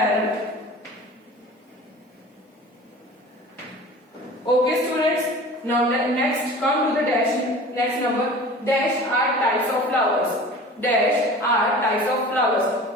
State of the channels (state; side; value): normal; both; correlation 0.40